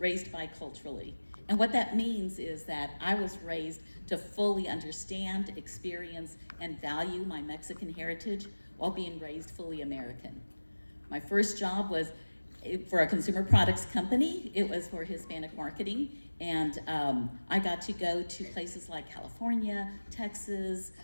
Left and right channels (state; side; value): inverted; both; correlation -1.00